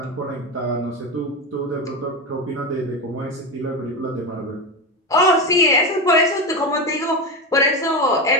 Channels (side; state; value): both; normal; correlation 0.18